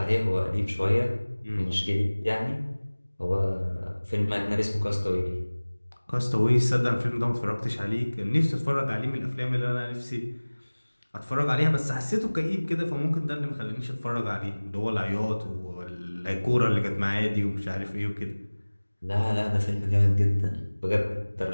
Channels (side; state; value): both; inverted; correlation -1.00